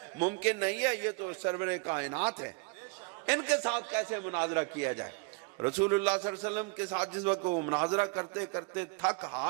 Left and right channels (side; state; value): left; quieter; 29.4 dB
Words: ممکن نہیں ہے، یہ تو سرور کائنات ہے، ان کے ساتھ کیسے مناظرہ کیا جائے۔ رسول اللہ صلی اللہ علیہ وسلم کے ساتھ جس وقت وہ مناظرہ کرتے کرتے تھک